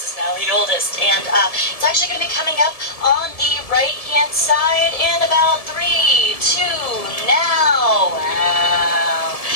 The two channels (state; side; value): late; right; 1.7 ms